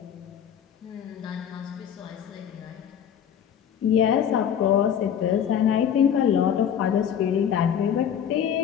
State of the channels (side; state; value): right; quieter; 8.8 dB